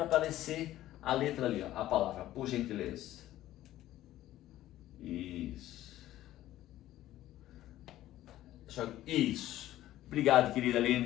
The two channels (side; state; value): right; quieter; 14.2 dB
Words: aparecer a letra ali, ó, a palavra, por gentileza. Isso. Isso. Obrigado, querida